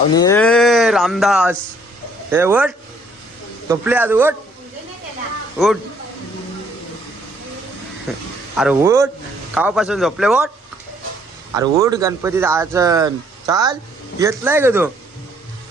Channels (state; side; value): normal; both; correlation 0.64